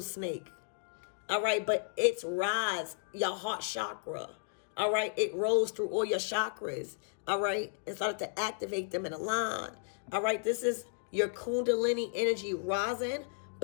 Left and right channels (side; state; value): right; silent; digital silence